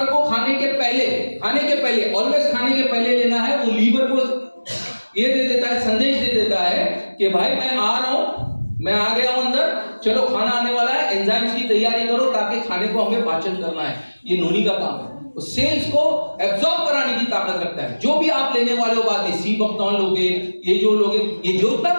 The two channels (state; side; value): inverted; both; correlation -1.00